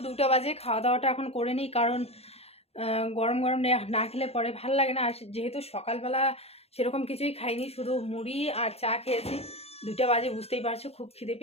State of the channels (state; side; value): late; right; 0.29 ms